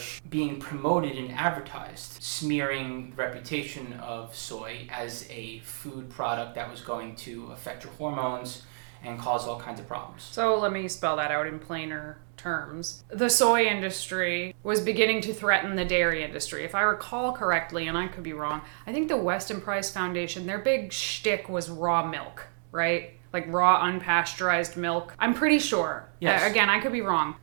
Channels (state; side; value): silent; left; digital silence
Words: being promoted and advertised, smearing the reputation of soy as a food product that was going to affect your hormones and cause all kinds of problems. So let me spell that out in plainer terms. The soy industry was beginning to threaten the dairy industry. If I recall correctly, and I could be wrong, I think the Weston Price Foundation, their big shtick was raw milk, right? Like raw unpasteurized milk. I'm pretty sure. Yes. Again, I could be wrong.